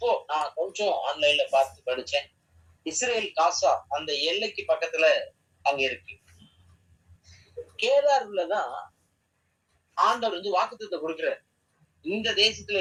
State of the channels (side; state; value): both; identical; correlation 1.00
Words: நான் கொஞ்சம் ஆன்லைன்ல பார்த்து படிச்சேன். இஸ்ரேல் காசா அந்த எல்லைக்கு பக்கத்துல அங்க இருக்கு. கேராருலதான் ஆண்டவர் வந்து வாக்குத்தத்தம் கொடுக்கிறார். இந்த தேசத்துல